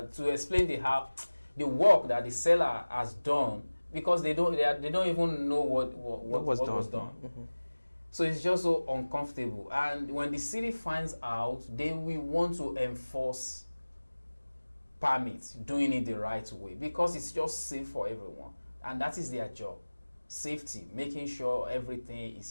explain the work that the seller has done, because they don't even know what was done. Mm-hmm. So it's just so uncomfortable. And when the city finds out, they will want to enforce permits, doing it the right way, because it's just safe for everyone. And that is their job. Safety, making sure everything is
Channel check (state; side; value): inverted; both; correlation -1.00